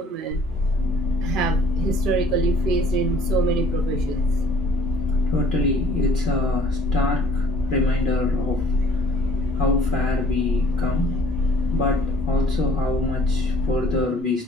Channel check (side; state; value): both; normal; correlation 0.56